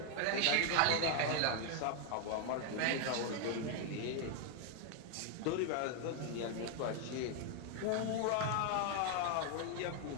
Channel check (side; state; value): both; different; correlation 0.00